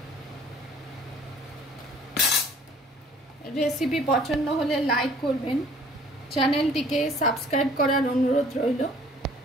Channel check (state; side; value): normal; both; correlation 0.54